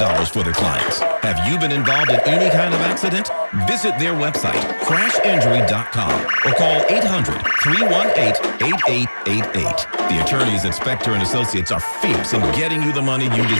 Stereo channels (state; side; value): inverted; both; correlation -1.00